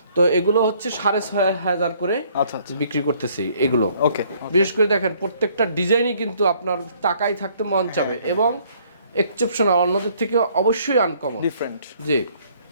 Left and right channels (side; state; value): both; inverted; correlation -0.62